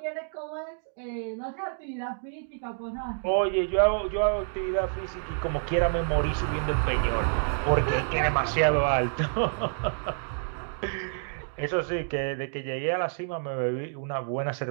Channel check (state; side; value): silent; left; digital silence